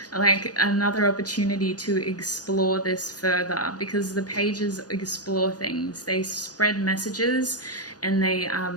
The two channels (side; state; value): right; late; 0.68 ms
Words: like another opportunity to explore this further, because the pages explore things, they spread messages, and they are